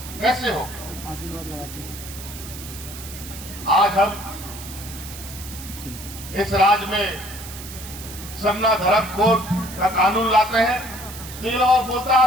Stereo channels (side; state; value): right; noise; hiss, 13 dB below the sound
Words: कैसे हो? आज हम इस राज्य में सन्ना धर्म कोड का कानून लाते हैं, तो ये लोग बोलता है